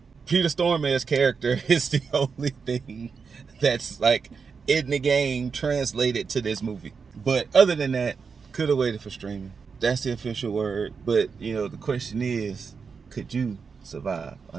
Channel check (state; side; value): quieter; left; 5.5 dB